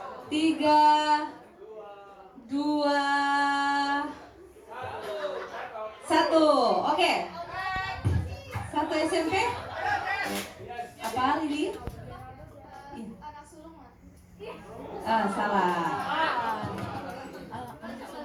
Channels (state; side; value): identical; both; correlation 1.00